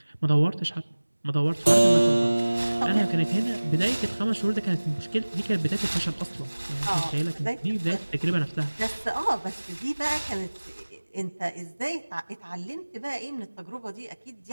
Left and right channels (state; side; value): inverted; both; correlation -1.00